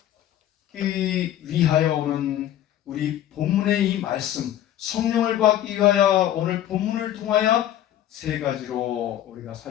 위하여 오는 우리 본문의 이 말씀, 성령을 받기 위하여 오늘 본문을 통하여 세 가지로 우리가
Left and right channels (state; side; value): quieter; right; 12.0 dB